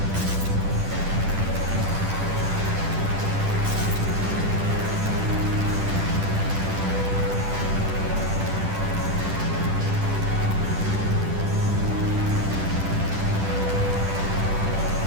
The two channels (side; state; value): left; late; 10 ms